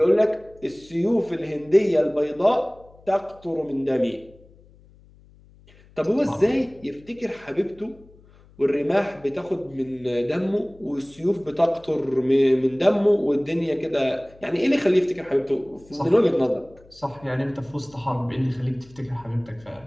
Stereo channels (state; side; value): noise; left; hum, 26 dB below the sound